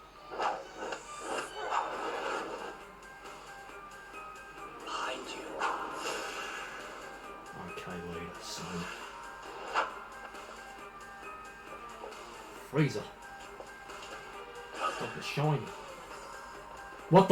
Behind you. Okay, lead, so. Freezer. Stop the shiny. What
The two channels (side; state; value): both; identical; correlation 1.00